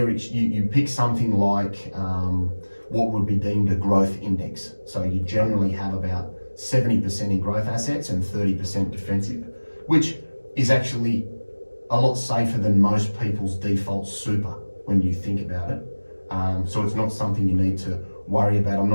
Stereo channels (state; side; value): inverted; both; correlation -1.00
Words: you pick something like what would be deemed a growth index. So you generally have about 70% in growth assets and 30% defensive, which is actually a lot safer than most people's default super when you think about it. So it's not something you need to worry about. I'm